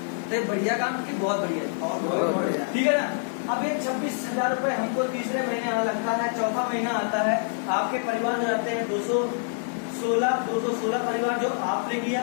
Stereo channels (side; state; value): right; silent; 61 dB below the other